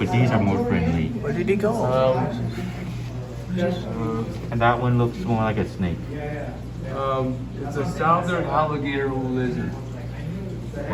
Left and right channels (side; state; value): both; identical; correlation 1.00